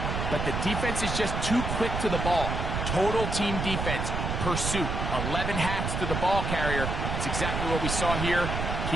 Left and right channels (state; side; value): noise; right; rumble, 2 dB below the sound